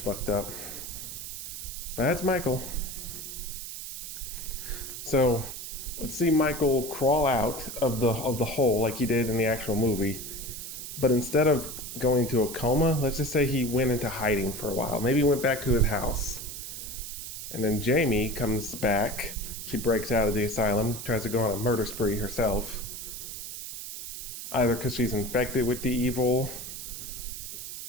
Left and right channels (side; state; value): right; noise; hiss, 8 dB below the sound